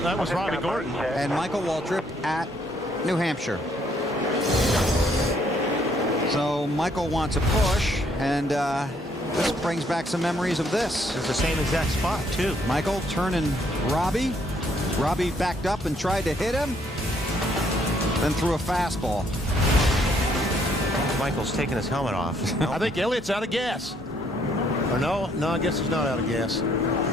that was Robbie Gordon. And Michael Waltrip at New Hampshire. So Michael wants a push, and this brings back some memories of this. It's the same exact spot, too. Michael turning Robbie. Robbie backed up and tried to hit him, then threw a fastball. Michael's taking his helmet off. I think Elliott's out of gas. Or no, I guess he's not out of gas.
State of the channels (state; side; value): normal; both; correlation 0.68